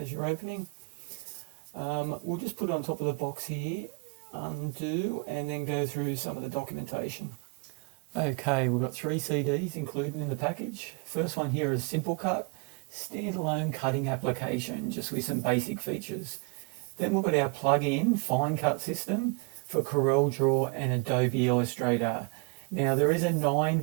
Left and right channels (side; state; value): left; quieter; 33.4 dB